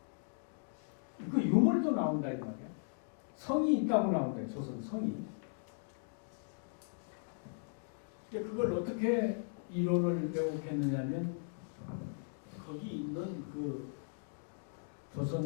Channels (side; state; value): right; silent; digital silence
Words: 그 유물도 나온다 이 말이야. 성이 있다고 나온다. 조선 성이. 그걸 어떻게 이론을 왜곡했느냐면 거기 있는 그